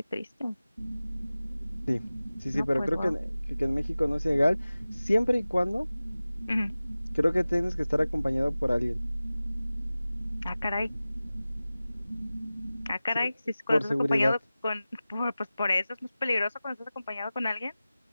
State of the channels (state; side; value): inverted; both; correlation -0.97